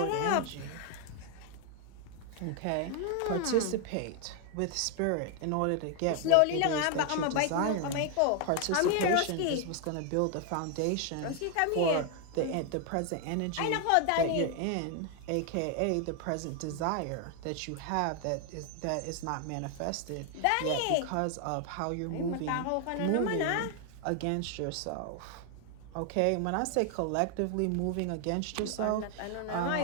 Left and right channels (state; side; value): different; both; correlation 0.00